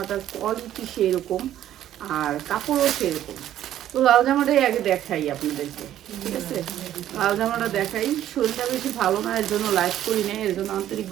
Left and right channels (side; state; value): left; quieter; 12.0 dB